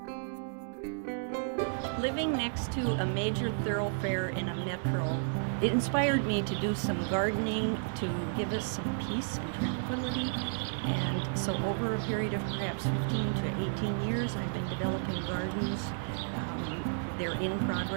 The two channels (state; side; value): silent; left; digital silence